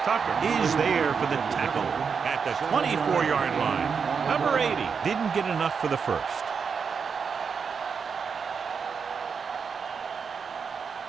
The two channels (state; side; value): quieter; left; 6.0 dB